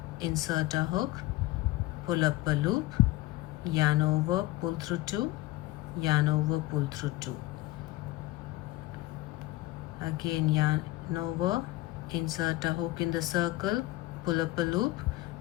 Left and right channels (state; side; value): quieter; right; 18.0 dB